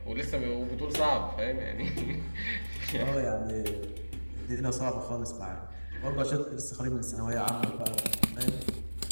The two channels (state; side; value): inverted; both; correlation -1.00